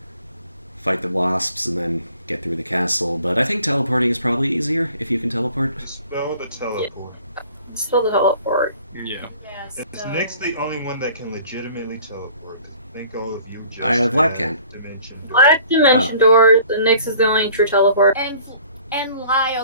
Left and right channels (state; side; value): inverted; both; correlation -0.51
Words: fight the wasps and then get through the castle. But I think teleporting is probably easier if you can teleport. Spell the teleport. Spell the teleport. Yeah. Yeah, Is so... Nick's the only one that can legitimately teleport? I think all of you just Vlad can. Dimension door. Black dimension doors, and Nyx is the only true teleport. And Lyle